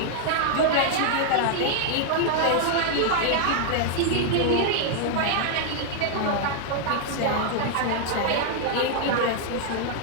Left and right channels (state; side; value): different; both; correlation 0.00